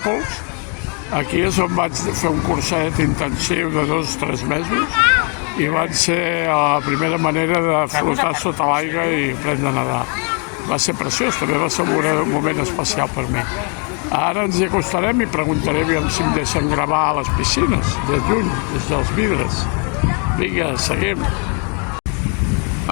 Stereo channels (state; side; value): quieter; right; 37.2 dB